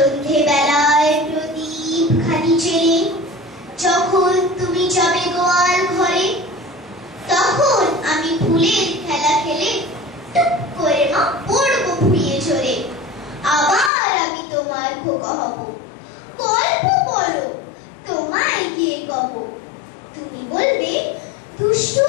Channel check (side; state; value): right; drops out; at 13.9 s